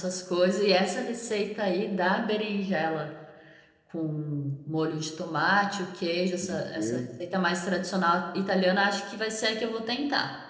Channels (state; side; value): identical; both; correlation 1.00